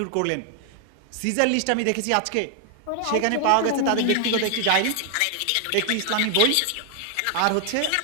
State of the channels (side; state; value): both; different; correlation 0.00